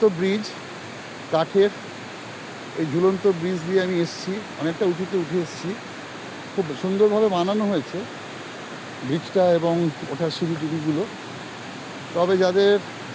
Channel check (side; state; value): both; identical; correlation 1.00